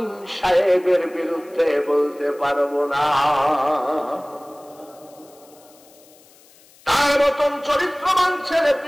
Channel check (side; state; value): left; noise; hiss, 27 dB below the sound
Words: সাহেবের বিরুদ্ধে বলতে পারবো না। তার মতন চরিত্রবান ছেলে